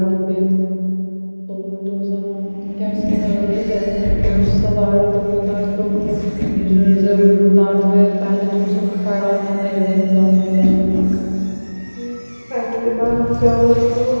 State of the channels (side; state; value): both; inverted; correlation -1.00